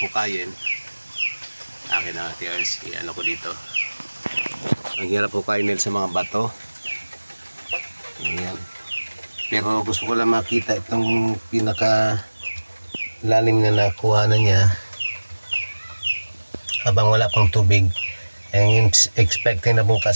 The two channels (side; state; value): both; inverted; correlation -1.00